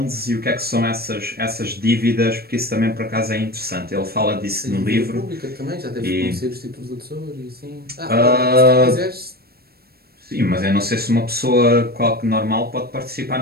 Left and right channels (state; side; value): late; left; 0.45 ms